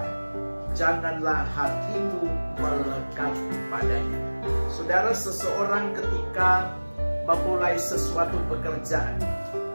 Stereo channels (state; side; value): inverted; both; correlation -1.00